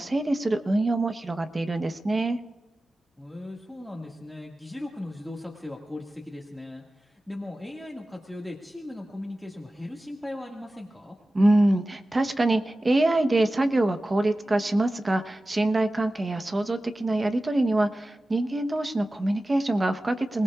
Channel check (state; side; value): normal; both; correlation 0.95